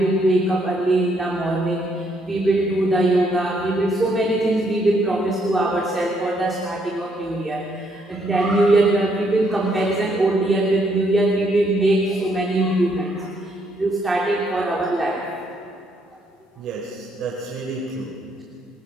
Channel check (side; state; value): both; normal; correlation 0.72